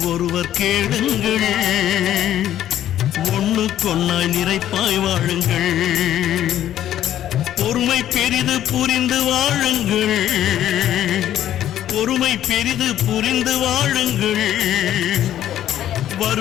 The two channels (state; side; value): quieter; right; 11.8 dB